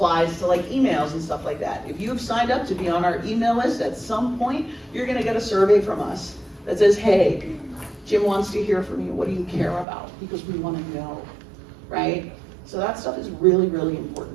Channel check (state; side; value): drops out; left; at 9.9 s